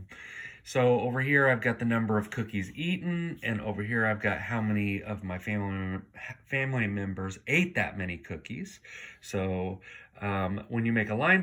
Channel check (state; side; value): identical; both; correlation 1.00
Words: So over here, I've got the number of cookies eaten, and over here, I've got how many of my family members ate that many cookies. So when you make a line